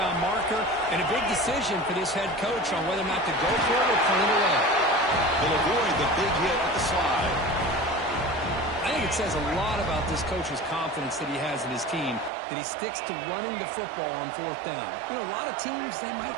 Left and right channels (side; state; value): left; drops out; at 12.3 s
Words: marker, and a big decision for this head coach on whether or not to go for it or punt it away. They'll avoid the big hit at the slide. I think it says a lot about this coach's confidence that he has in his team, that he sticks to running the football on fourth down. You know, a lot of teams, they might